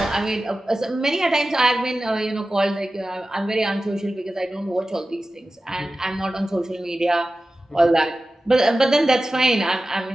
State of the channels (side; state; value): both; normal; correlation 0.95